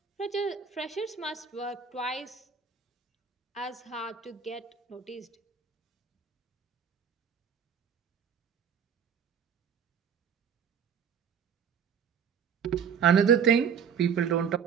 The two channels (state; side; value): quieter; left; 7.0 dB